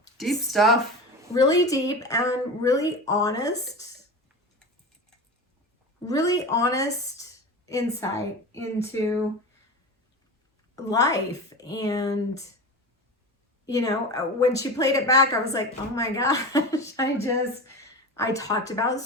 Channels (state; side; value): normal; both; correlation 0.29